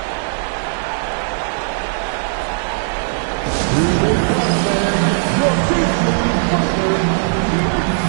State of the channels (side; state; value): left; silent; digital silence